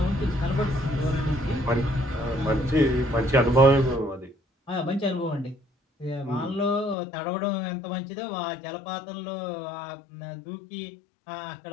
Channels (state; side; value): drops out; right; at 7.0 s